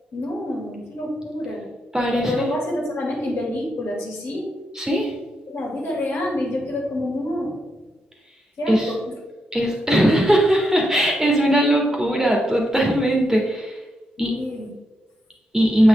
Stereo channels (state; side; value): normal; both; correlation 0.83